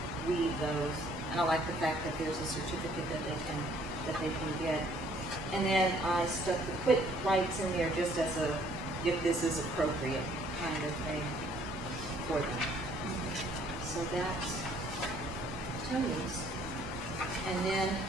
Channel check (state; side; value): normal; both; correlation 0.61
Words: those. And I like the fact that there's a certificate that they can get. And then I stuck the quick writes in there just as a, if this is appropriate kind of thing for them. So that's Tony's. And then